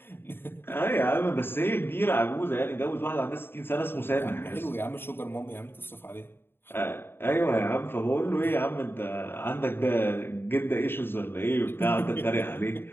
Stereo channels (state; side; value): late; right; 0.11 ms